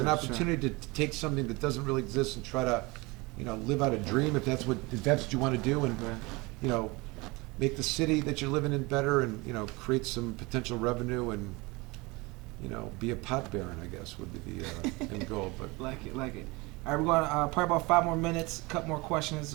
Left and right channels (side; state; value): left; quieter; 24.7 dB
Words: an opportunity to take something that doesn't really exist and try to, live out a dream if that's what you want to do, and Right. make the city that you're living in better, and create some potential revenue, and be a pot baron, I guess, would be the end goal. But Like it. All right, we're going to probably about 5 more minutes, couple more questions. It's